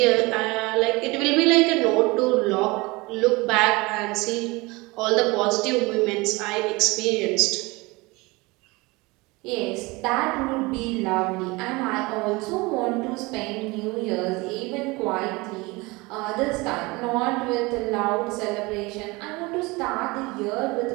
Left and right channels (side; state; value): left; quieter; 24.0 dB